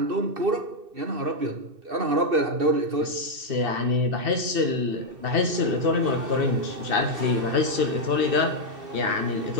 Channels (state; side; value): late; left; 2.6 ms